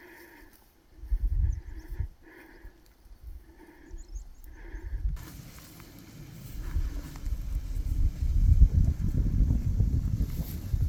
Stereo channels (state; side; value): identical; both; correlation 1.00